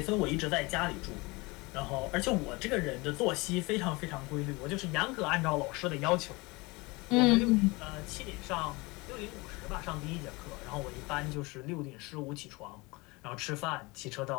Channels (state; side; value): quieter; right; 24.7 dB